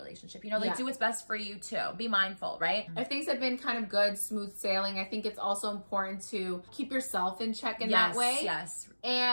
Do what's best for you too. Be mindful, right? If things have been kind of good, smooth sailing, I think it's also important to keep yourself in check in that way.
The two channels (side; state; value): both; inverted; correlation -1.00